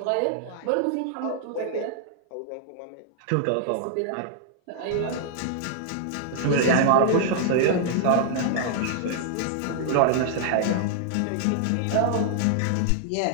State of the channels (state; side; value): different; both; correlation -0.01